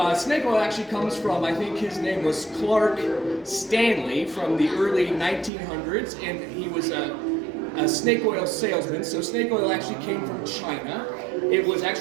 snake oil actually comes from, I think his name was Clark Stanley from the early 1900s, and he was a snake oil salesman. So snake oil actually came from China. It was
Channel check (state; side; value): drops out; left; at 5.5 s